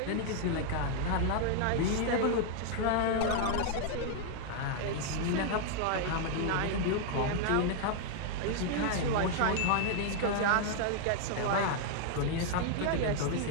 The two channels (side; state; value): both; different; correlation 0.00